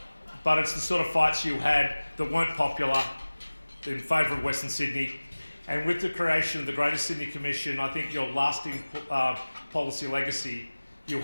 But it's the sort of fights you had that weren't popular in favour of Western Sydney. And with the creation of the Greater Sydney Commission, I think your lasting policy legacy you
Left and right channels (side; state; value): both; inverted; correlation -1.00